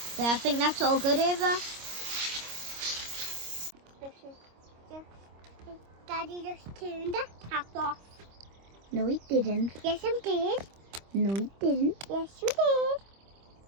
There, I think that's all good, Eva. Daddy just turned the tap off. No, he didn't. Yes, I did. No, he didn't. Yes, you did.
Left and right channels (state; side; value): late; left; 25 ms